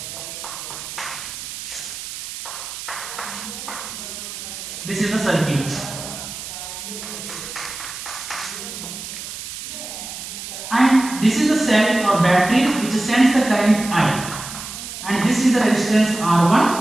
This is the circuit. And this is the cell or battery which sends the current I. And this is the resistance R1,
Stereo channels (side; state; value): right; noise; hiss, 9 dB below the sound